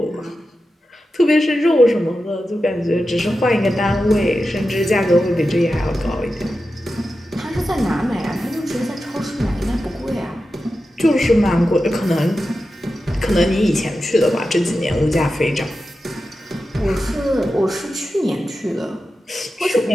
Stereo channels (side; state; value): both; normal; correlation 0.92